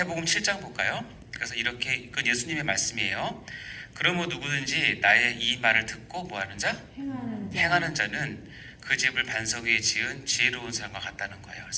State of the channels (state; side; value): identical; both; correlation 1.00